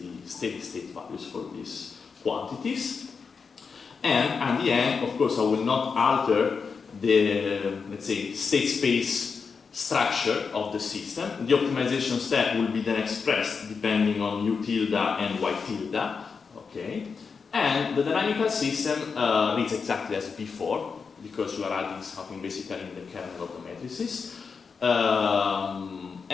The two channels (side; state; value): right; quieter; 5.4 dB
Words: steady state values for these quantities. And at the end, of course, I will not alter the, let's say, state space structure of the system. The optimization step will be then expressed depending on u tilde and y tilde, okay? And the dynamical system reads exactly as before, because you are adding something basically in the kernel of the matrices.